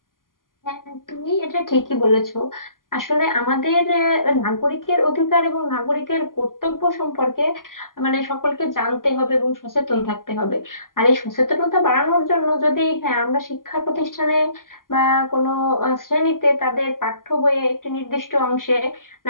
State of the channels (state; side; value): late; right; 0.91 ms